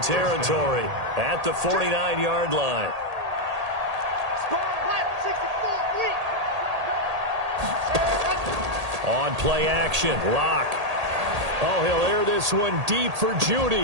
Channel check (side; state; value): left; late; 1.8 ms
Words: territory at the 49-yard line. On play action, Locke. Oh, he'll air this one deep for